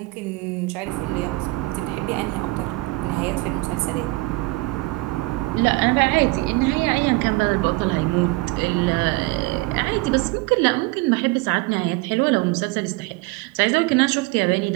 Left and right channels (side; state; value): left; quieter; 22.6 dB